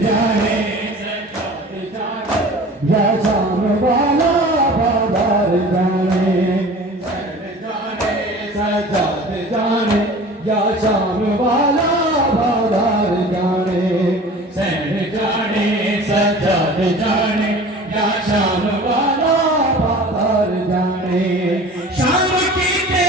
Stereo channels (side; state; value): both; normal; correlation 0.41